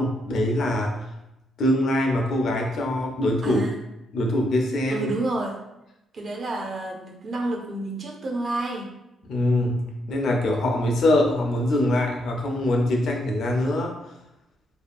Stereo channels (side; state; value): both; normal; correlation 0.77